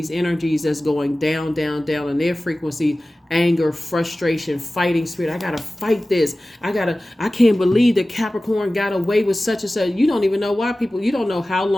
energies that's going down on their frequency. Anger, frustration, fighting spirit. I gotta fight this. I can't believe that Capricorn got away with such and such. You don't even know why you don't know how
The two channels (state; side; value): normal; both; correlation 0.96